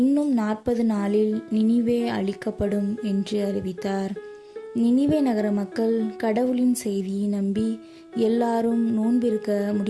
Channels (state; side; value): identical; both; correlation 1.00